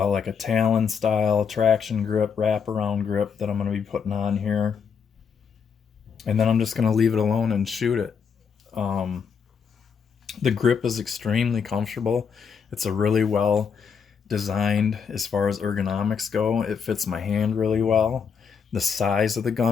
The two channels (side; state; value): right; quieter; 6.5 dB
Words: a Talon style traction grip, wraparound grip that I'm going to be putting on here. And then I'm just going to leave it alone and shoot it. The grip is extremely comfortable. It's a really well designed as far as ergonomics go. It fits my hand really well. The size of the